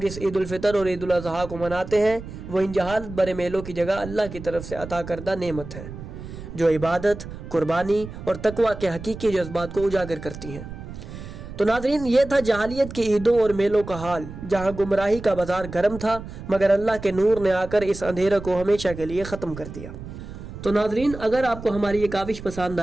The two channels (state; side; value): noise; right; rumble, 12 dB below the sound